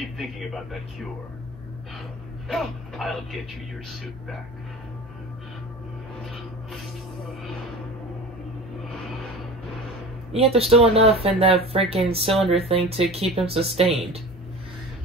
thinking about that cure. I'll get you your suit back. Yet there's still enough in that freaking cylinder thing to keep him sustained.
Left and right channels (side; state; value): both; normal; correlation 0.36